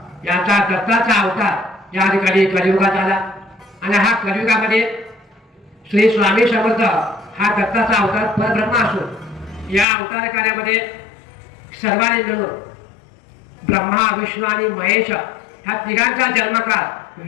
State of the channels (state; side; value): drops out; right; at 9.9 s